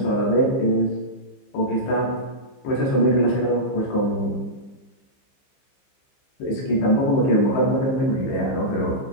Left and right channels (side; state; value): right; late; 15 ms